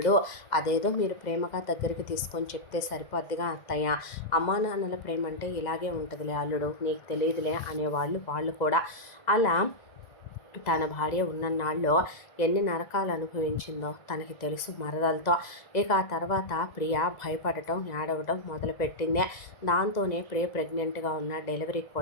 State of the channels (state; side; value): late; right; 2.0 ms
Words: అదేదో మీరు ప్రేమగా దగ్గరికి తీసుకొని చెప్తే సరిపోద్దిగా అత్తయ్య, అమ్మా నాన్నల ప్రేమ అంటే ఇలాగే ఉంటుందిలే అల్లుడు, నీకు తెలియదులే అనేవాళ్ళు వాళ్ళు కూడా. అలా తన భార్య ఉన్నన్నాళ్ళు ఎన్ని నరకాలు అనుభవించిందో తనకి తెలుసు మరదలతో. ఇక ఆ తర్వాత ప్రియ భయపడటం ఏడవటం మొదలుపెట్టింది. దాంతోనే ప్రియ ప్రెగ్నెంట్గా ఉన్న డెలివరీకి